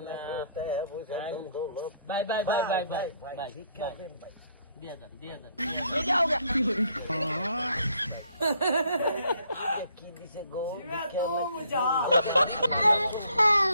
বাই বাই বাই বাই বাই বাই ভিক্ষা দেন ভাই দিয়ে যান ये क्या हो गया की दिसे गो तू मुझा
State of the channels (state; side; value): inverted; both; correlation -0.67